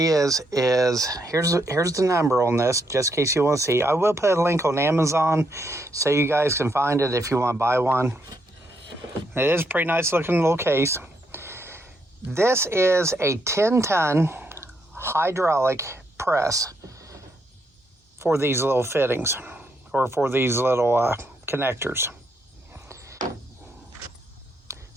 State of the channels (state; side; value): normal; both; correlation 0.77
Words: is here's the number on this, just in case you want to see. I will put a link on Amazon so you guys can find it if you want to buy one. It is a pretty nice looking little case. This is a 10-ton hydraulic press for these little fittings, or for these little connectors.